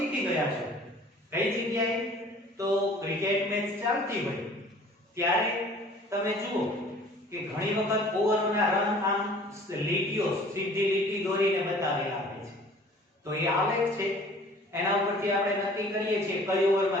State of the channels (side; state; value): both; normal; correlation 0.50